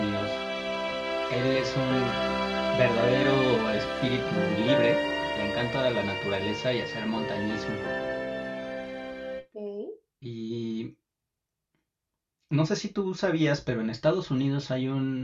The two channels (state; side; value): identical; both; correlation 1.00